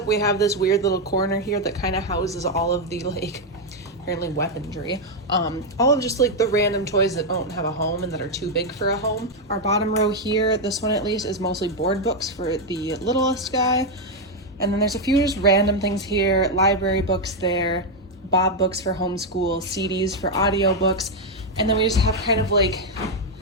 we have this weird little corner here that kind of houses all of the like, apparently weaponry. All of just like the random toys that don't have a home and that are too big for a home. Our bottom row here, this one at least, is mostly board books for the littlest guy. And then there's a few just random things here, library books there, Bob books for homeschool, CDs for audiobooks. And then we just have kind of like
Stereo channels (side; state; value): both; normal; correlation 0.02